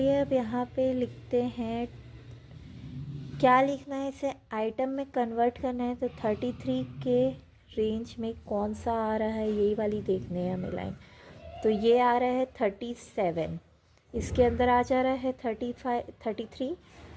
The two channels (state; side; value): identical; both; correlation 1.00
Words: अब यहाँ पे लिखते हैं, क्या लिखना है, इसे आइटम में कन्वर्ट करना है। तो 33 के रेंज में कौन सा आ रहा है, यही वाली देखने हैं हमें लाइन। तो ये आ रहा है 37, इसके अंदर आ जा रहा है 33।